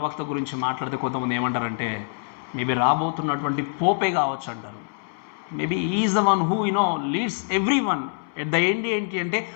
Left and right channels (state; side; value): silent; right; 62 dB below the other